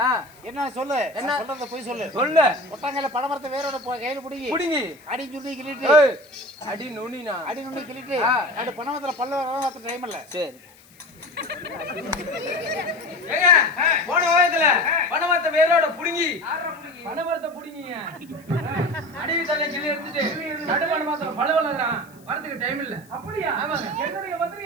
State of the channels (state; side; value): noise; left; hiss, 27 dB below the sound